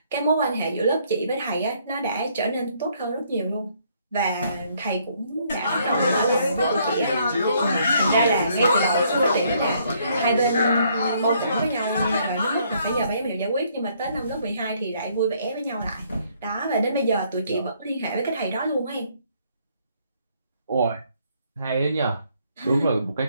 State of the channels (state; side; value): inverted; both; correlation -0.67